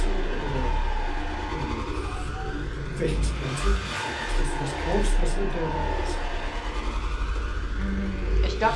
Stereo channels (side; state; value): both; identical; correlation 1.00